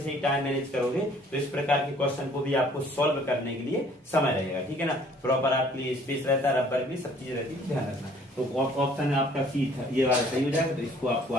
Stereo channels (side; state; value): both; normal; correlation 0.57